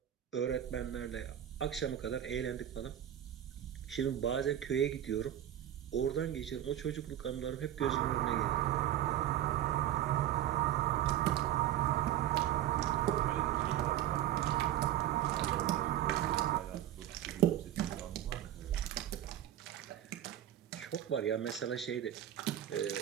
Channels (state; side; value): quieter; left; 11.7 dB